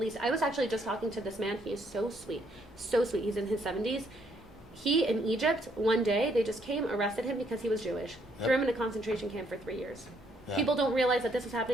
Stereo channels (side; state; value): both; normal; correlation 0.70